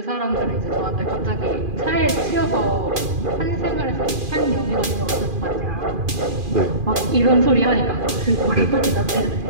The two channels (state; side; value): late; left; 2.4 ms